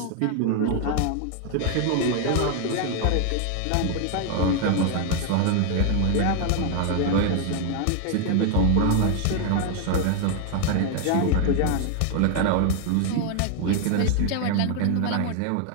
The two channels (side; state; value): both; different; correlation 0.00